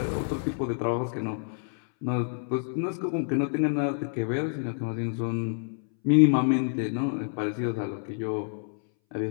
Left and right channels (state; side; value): silent; right; 59 dB below the other